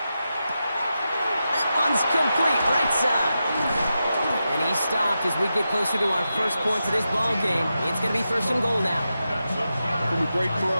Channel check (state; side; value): inverted; both; correlation -0.89